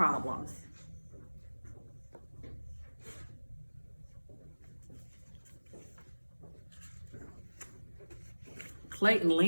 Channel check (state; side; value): inverted; both; correlation -1.00